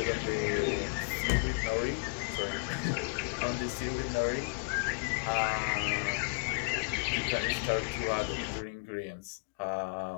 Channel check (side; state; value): right; quieter; 35.7 dB